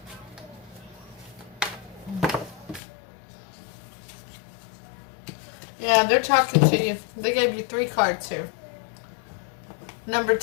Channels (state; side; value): drops out; right; at 2.8 s